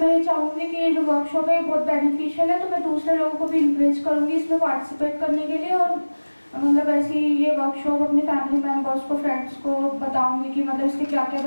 चाहूँगी कि ये जो वर्कशॉप है बहुत बेनिफिशियल है, तो मैं दूसरे लोगों को भी इंकरेज करूँगी इसमें पार्टिसिपेट करने के लिए। और ऐसी ये वर्कशॉप अपने फैमिली मेम्बर्स को, फ्रेंड्स को बताऊँगी कि इसके क्या क्या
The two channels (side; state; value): both; inverted; correlation -1.00